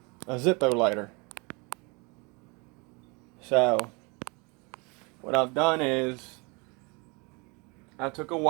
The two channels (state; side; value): quieter; left; 29.7 dB